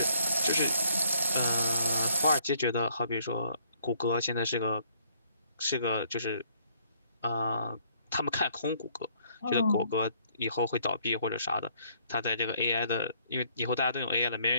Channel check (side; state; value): both; inverted; correlation -0.65